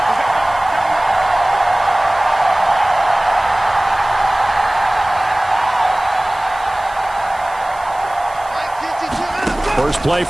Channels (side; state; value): right; noise; hiss, 24 dB below the sound